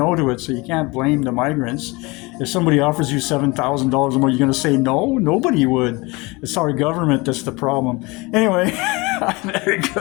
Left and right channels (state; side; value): quieter; right; 24.8 dB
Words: to it, so you can't blame the migrants. If somebody offers you $7,000 a month, you're going to say no? Nobody would. It's our government that's the problem. Anyway, there you